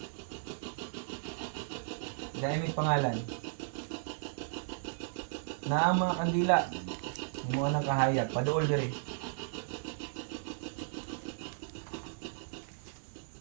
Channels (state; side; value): silent; left; 54 dB below the other